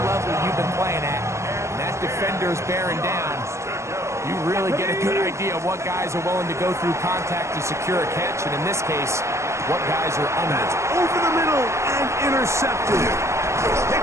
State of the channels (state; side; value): late; left; 0.14 ms